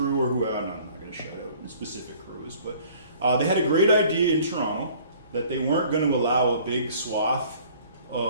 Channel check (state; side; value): inverted; both; correlation -0.53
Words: or who, I'm not going to shout out specific crews, but they had a great idea in Toronto that they weren't going to allow a big swath